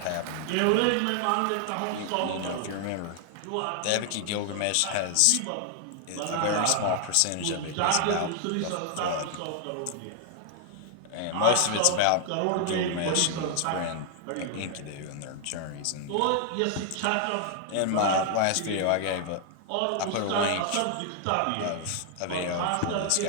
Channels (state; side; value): different; both; correlation 0.00